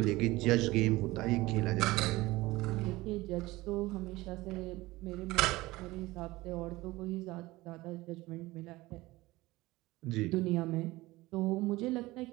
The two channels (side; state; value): left; quieter; 19.6 dB